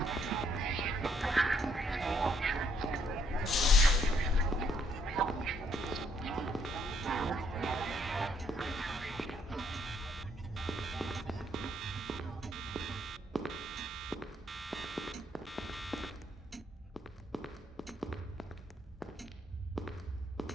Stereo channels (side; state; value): both; normal; correlation 0.70